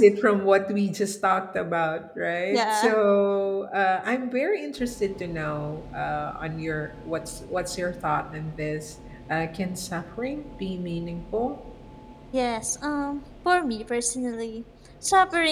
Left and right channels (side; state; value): both; identical; correlation 1.00